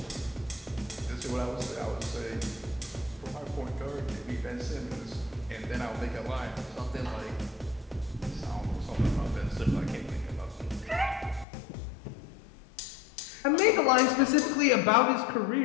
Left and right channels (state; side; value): drops out; right; at 11.5 s